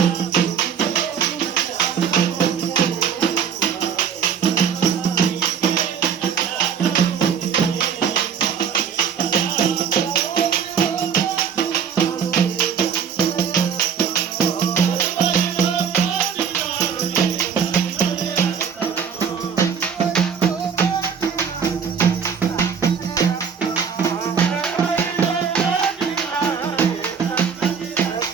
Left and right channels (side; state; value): left; quieter; 7.1 dB